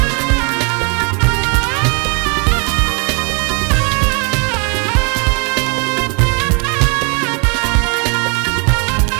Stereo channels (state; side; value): quieter; left; 35.1 dB